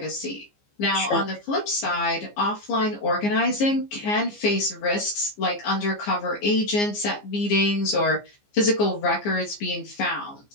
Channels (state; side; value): late; right; 15 ms